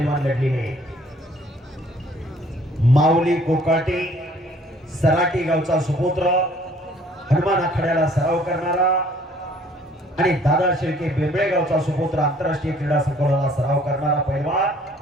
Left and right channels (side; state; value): both; normal; correlation 0.58